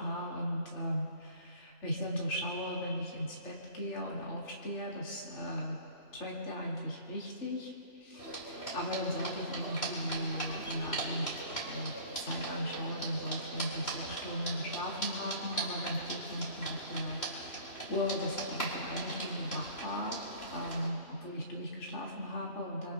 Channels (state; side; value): late; right; 3.0 ms